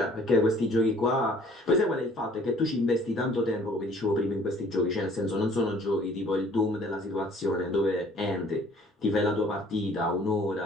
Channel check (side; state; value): both; normal; correlation 0.55